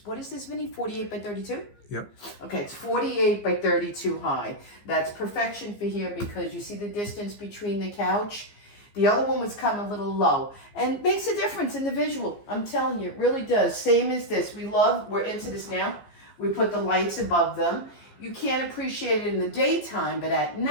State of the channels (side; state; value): right; late; 15 ms